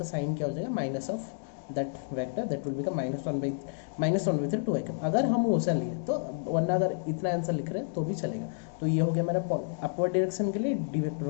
साइन क्या हो जाएगा minus of that vector that will become -1/3 2 cap. अगर हम वैसा लिए तो, वरना अगर इतना आंसर लिख रहे हैं तो भी चलेगा। तो ये हो गया मेरा अपवर्ड डायरेक्शन के लिए डी वेक्टर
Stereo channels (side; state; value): right; silent; digital silence